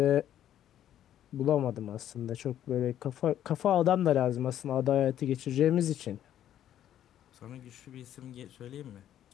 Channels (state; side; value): quieter; right; 11.2 dB